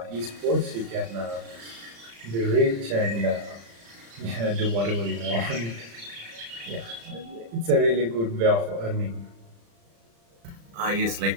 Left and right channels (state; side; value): late; left; 35 ms